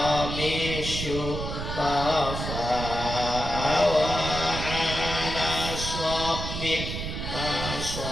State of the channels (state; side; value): noise; right; rumble, 5 dB below the sound